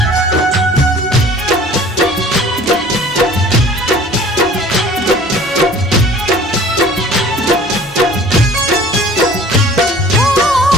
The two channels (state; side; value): normal; both; correlation 0.48